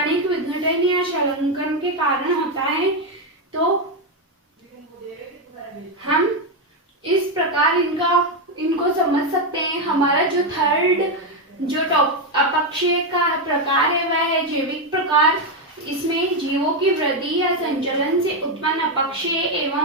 विघटन या शलंकन के कारण होता है। तो हम इस प्रकार इनको समझ सकते हैं। हमारा जो थर्ड जो अपक्षय का प्रकार है वह है जैविक प्रकार। इसमें जीवों की वृद्धि या संचलन से उत्पन्न अपक्षय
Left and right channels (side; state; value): both; normal; correlation 0.06